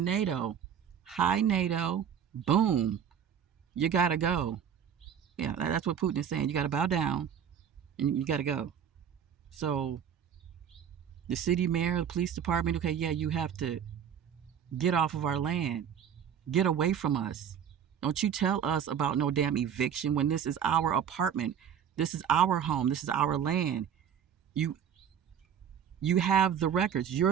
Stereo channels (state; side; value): quieter; left; 8.5 dB